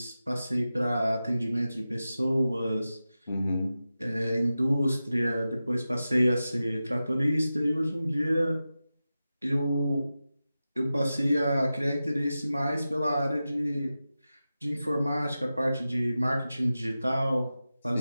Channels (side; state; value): both; inverted; correlation -0.94